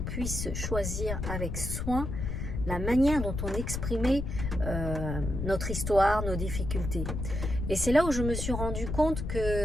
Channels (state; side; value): noise; left; rumble, 4 dB below the sound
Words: puisse choisir avec soin la manière dont on exprimait notre histoire, nos difficultés. Et c'est là où je me suis rendu compte